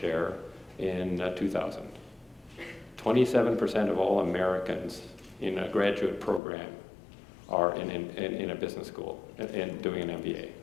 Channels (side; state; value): right; drops out; at 6.4 s